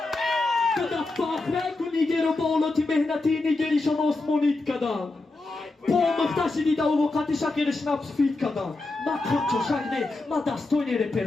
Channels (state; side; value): quieter; right; 3.2 dB